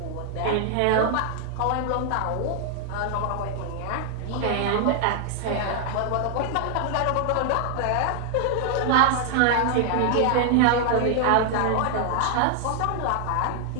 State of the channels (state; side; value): different; both; correlation 0.00